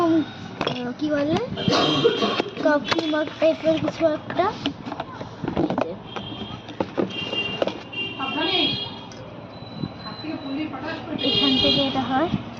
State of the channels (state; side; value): identical; both; correlation 1.00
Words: কি বলে কফি মগ টাইপের কিছু একটা। এখান থেকে এটা হয়